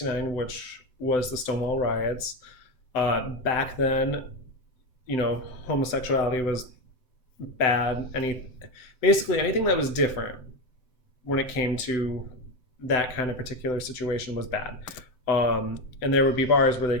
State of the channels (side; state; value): right; late; 7.8 ms